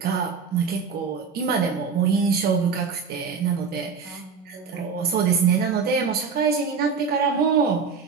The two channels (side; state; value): left; quieter; 5.6 dB